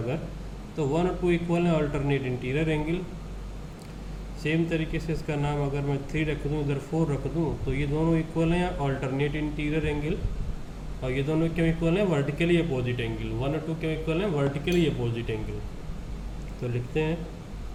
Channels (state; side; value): identical; both; correlation 1.00